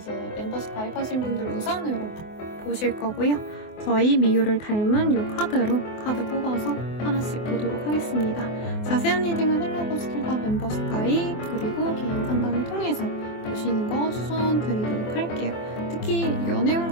멤버십 가입하신 분들 우선으로 보실 거고요. 저희 미유를 닮은 이 카드로 카드 뽑아서 하나씩 보도록 하겠습니다. 자세한 리딩은 헬로보스킬과 멤버십 가입 그리고 개인 상담을 통해서 보시는 거 추천드리도록 할게요. 특히 연애운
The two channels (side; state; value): right; late; 24 ms